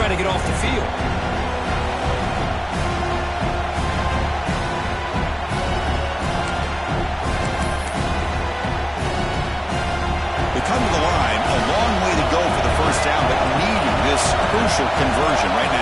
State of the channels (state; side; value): identical; both; correlation 1.00